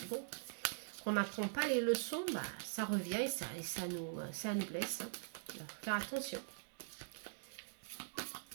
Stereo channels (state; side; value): silent; left; digital silence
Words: bon, qu'on n'apprend pas les leçons, bah, ça revient et ça nous blesse. Hein. Alors, faire attention.